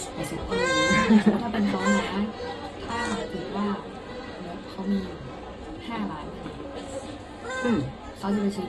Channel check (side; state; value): both; identical; correlation 1.00